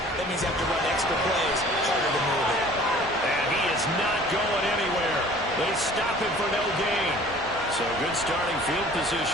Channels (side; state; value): both; normal; correlation 0.49